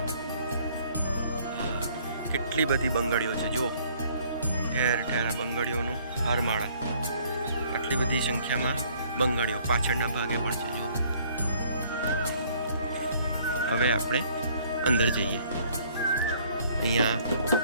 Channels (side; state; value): both; inverted; correlation -0.60